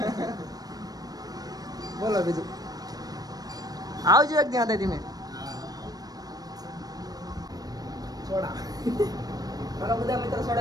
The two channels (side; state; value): left; late; 0.19 ms